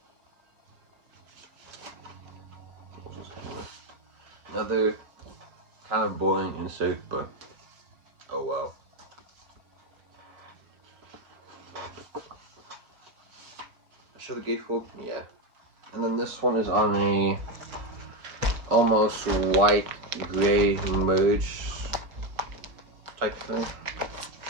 Another kind of boring insert, but oh well. I show the gatefold? Yeah. And then this one is on a almost white gray merge type thing.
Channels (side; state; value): left; late; 5.5 ms